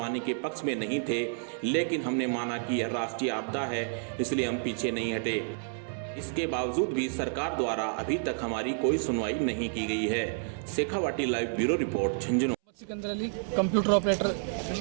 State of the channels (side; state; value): left; silent; 58 dB below the other